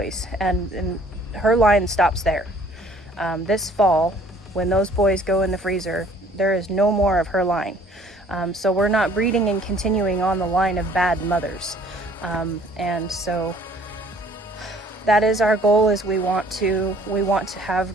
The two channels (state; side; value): normal; both; correlation 0.56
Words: and her line stops there. This fall, when those boys go in the freezer, there is no more of her line. So we're not breeding and continuing on the line of bad mothers. And so that is our goal, is we want to have